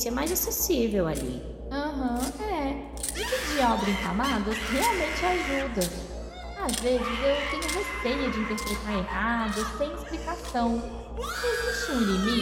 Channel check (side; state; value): both; identical; correlation 1.00